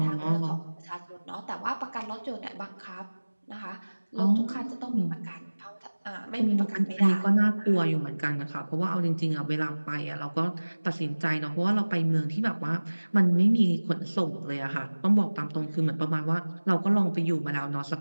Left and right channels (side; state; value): both; inverted; correlation -1.00